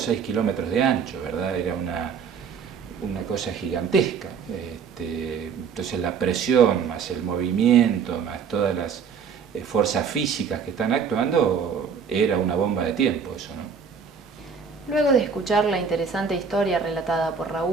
kilómetros de ancho, ¿verdad? Era una cosa gigantesca. Entonces la presión, más el movimiento, más todas las fuerzas físicas que están actuando, era una bomba de tiempo eso, ¿no? Luego de escuchar la interesante historia relatada por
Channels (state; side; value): quieter; left; 6.3 dB